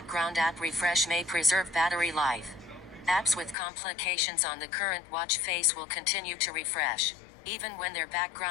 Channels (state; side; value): drops out; right; at 3.6 s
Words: app refresh may preserve battery life. Apps with complications on the current watch face will continue to refresh, even when their